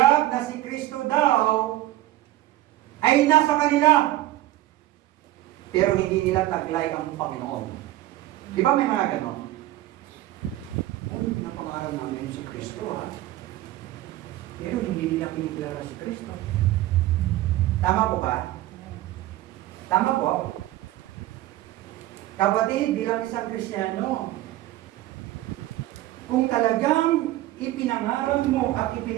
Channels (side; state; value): left; quieter; 15.5 dB